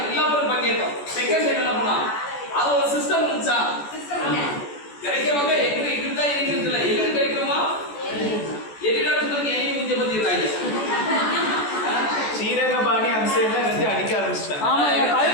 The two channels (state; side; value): late; right; 14 ms